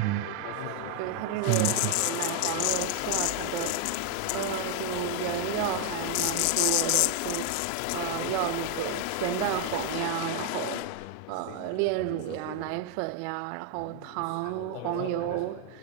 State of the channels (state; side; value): different; both; correlation 0.00